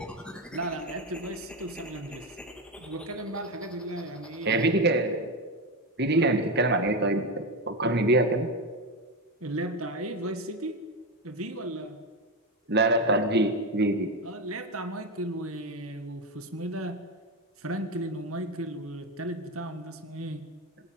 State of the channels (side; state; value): both; normal; correlation 0.14